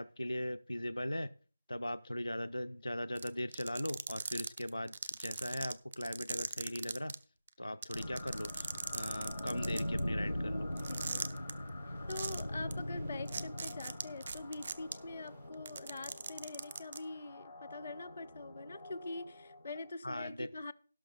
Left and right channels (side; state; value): both; inverted; correlation -0.92